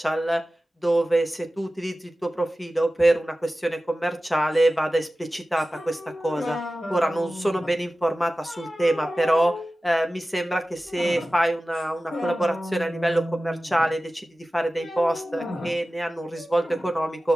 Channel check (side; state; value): both; normal; correlation 0.96